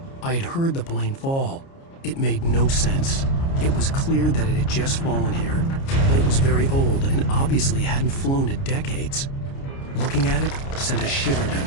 I had heard the plane fall. It made no sense. It was clear that it had just fallen here, but it was very old and obviously hadn't flown in decades. Looking at it sent a shiver down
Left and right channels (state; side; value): late; right; 29 ms